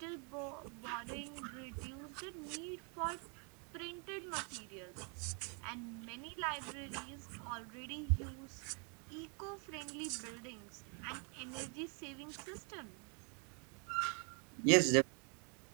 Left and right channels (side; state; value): left; quieter; 37.4 dB